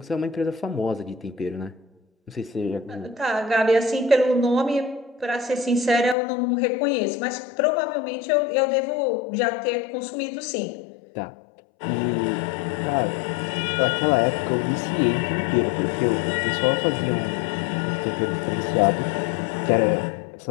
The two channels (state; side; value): drops out; right; at 6.2 s